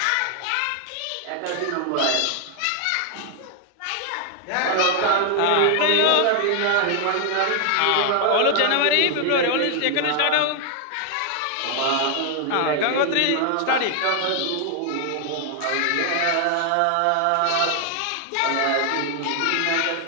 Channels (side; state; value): both; different; correlation 0.00